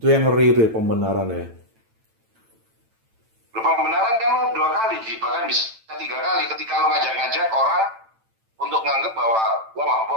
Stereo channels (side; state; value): left; late; 9.0 ms